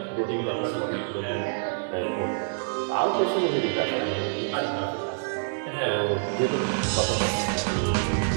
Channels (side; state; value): left; silent; 60 dB below the other